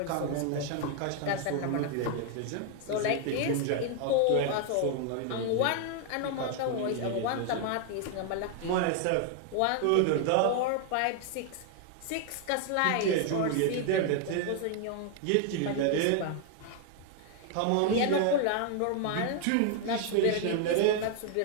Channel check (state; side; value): different; both; correlation 0.00